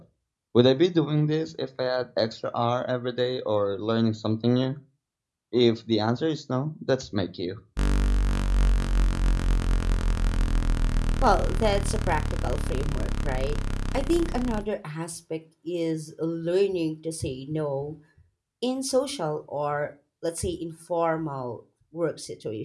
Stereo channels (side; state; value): both; identical; correlation 1.00